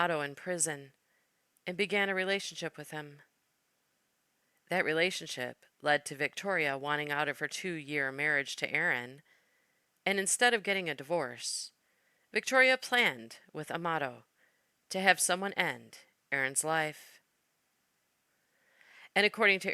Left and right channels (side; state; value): both; identical; correlation 1.00